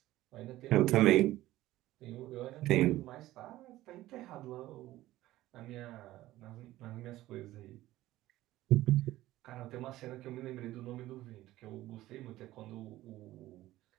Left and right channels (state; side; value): quieter; left; 15.9 dB